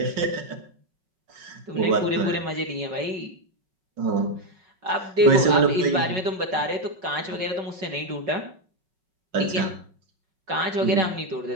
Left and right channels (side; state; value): left; late; 5.3 ms